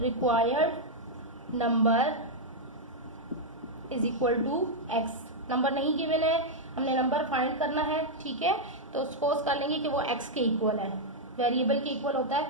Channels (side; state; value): both; normal; correlation -0.03